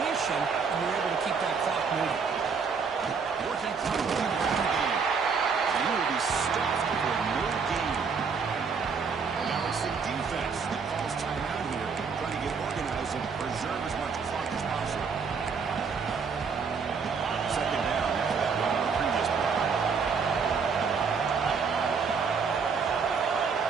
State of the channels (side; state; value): left; quieter; 5.6 dB